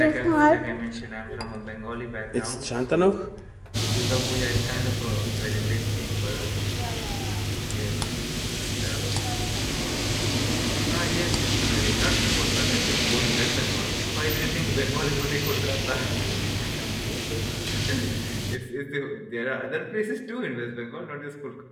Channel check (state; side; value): identical; both; correlation 1.00